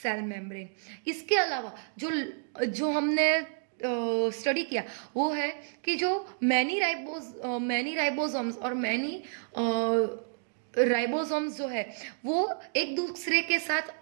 सेल मेम्ब्रेन. इसके अलावा जो हमने स्टडी किया वो है कि जो मैनी राइबोसोम्स और मैनी राइबोसोम्स जो है वो एक दूसरे के साथ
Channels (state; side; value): silent; left; digital silence